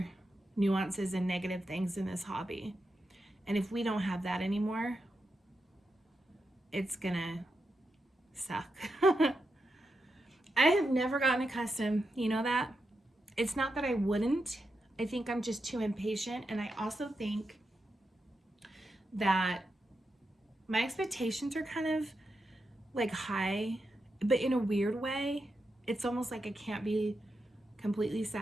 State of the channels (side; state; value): both; normal; correlation 0.87